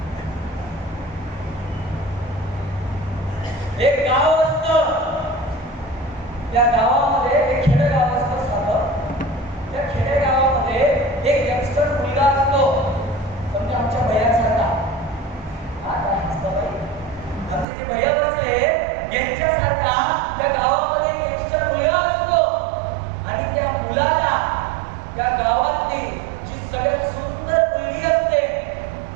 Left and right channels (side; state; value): left; drops out; at 17.7 s